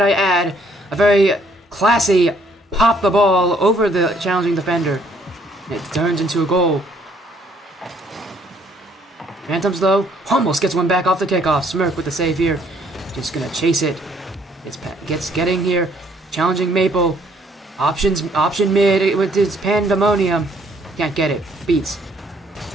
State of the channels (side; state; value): both; normal; correlation 0.65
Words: I add. A very classy pop the ball over the challenging defender. It turns into a goal. Phantoms, though, almost gets one back off the kickoff. Smirk with the save here. Just gonna chase it. Gets getting here. Challenging Maple. Option mid with his pandemonium. Can't get it. Beats.